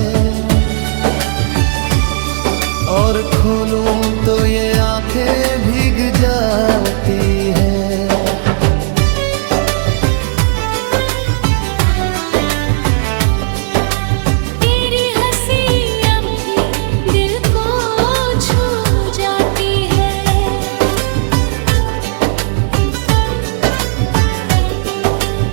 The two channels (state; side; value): silent; left; digital silence